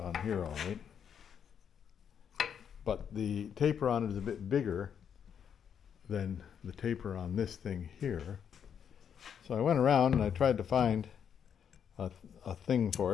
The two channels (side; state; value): right; quieter; 8.0 dB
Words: here all right, but the taper on it is a bit bigger than the taper on this thing here. So I went around and I tried to find a thing for